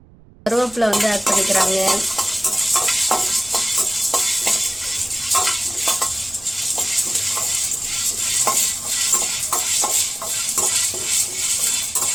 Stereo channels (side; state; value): right; noise; rumble, 24 dB below the sound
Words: கருவேப்பிலை வந்து ஆட் பண்ணிக்கிறாங்க.